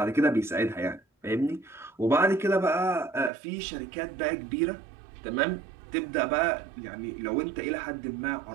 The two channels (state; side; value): drops out; left; at 3.3 s